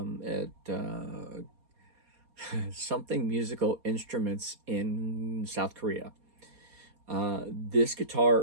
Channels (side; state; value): left; late; 4.2 ms